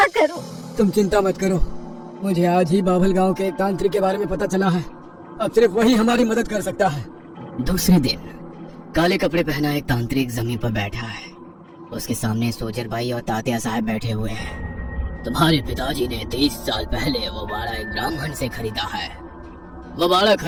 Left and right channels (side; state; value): both; identical; correlation 1.00